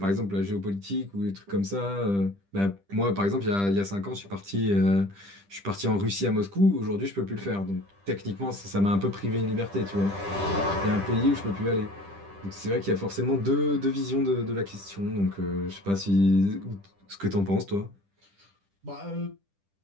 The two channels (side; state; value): left; late; 10 ms